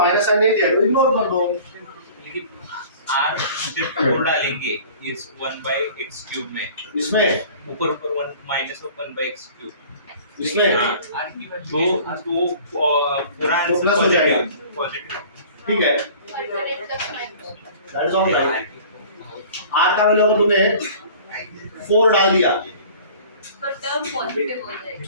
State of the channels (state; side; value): inverted; both; correlation -0.46